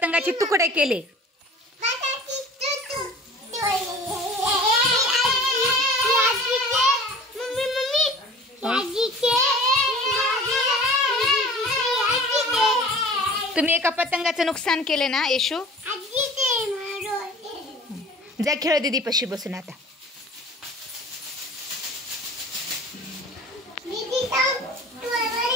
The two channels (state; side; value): normal; both; correlation 0.43